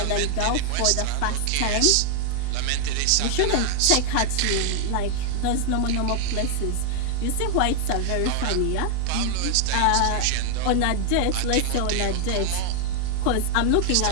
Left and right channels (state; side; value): different; both; correlation 0.00